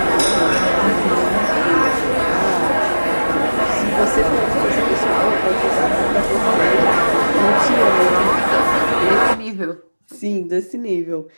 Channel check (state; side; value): inverted; both; correlation -1.00